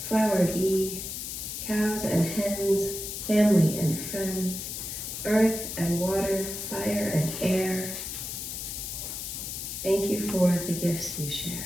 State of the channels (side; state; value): left; noise; hiss, 6 dB below the sound